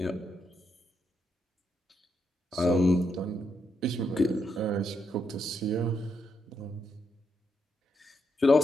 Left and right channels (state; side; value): normal; both; correlation 0.80